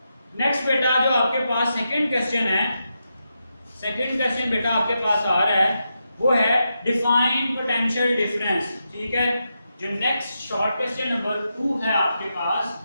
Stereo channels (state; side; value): inverted; both; correlation -0.86